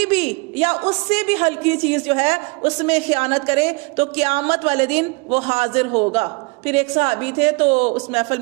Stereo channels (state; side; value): quieter; left; 28.4 dB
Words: भी या उससे भी हल्की चीज जो है उसमें खयानत करे तो क़यामत वाले दिन वो हाजिर होगा। پھر ایک صحابی تھے تو اس محفل